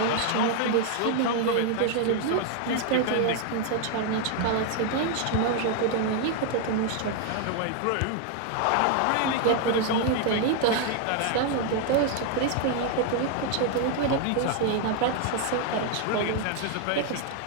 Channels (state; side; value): different; both; correlation 0.00